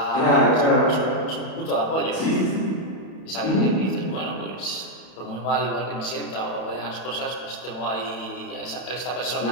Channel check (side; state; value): right; late; 31 ms